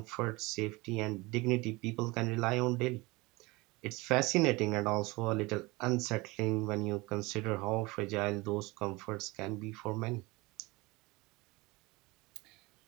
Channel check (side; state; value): left; quieter; 23.4 dB